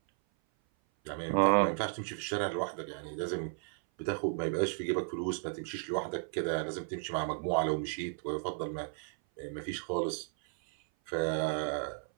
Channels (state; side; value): silent; left; 55 dB below the other